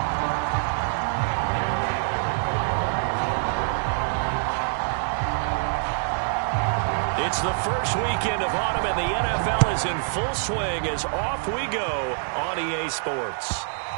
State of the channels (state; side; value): silent; left; digital silence